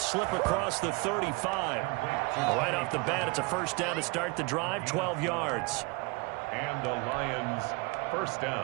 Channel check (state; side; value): quieter; left; 26.8 dB